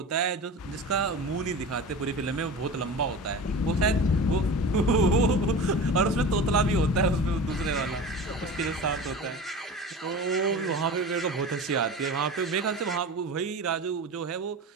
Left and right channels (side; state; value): both; normal; correlation 0.32